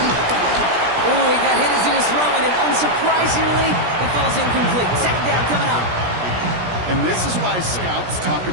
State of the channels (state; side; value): late; left; 17 ms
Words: Oh, he got hit as he was throwing, and unsurprisingly, it falls incomplete. 2nd down coming up. And this is why scouts talk